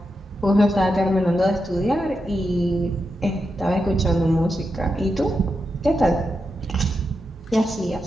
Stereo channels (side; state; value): both; normal; correlation 0.87